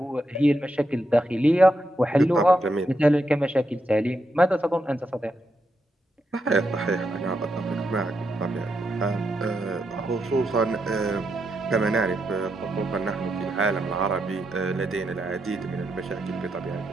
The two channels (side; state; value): both; normal; correlation 0.83